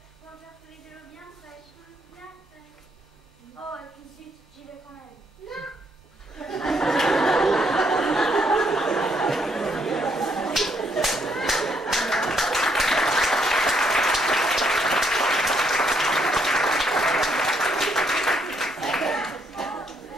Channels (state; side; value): normal; both; correlation 0.72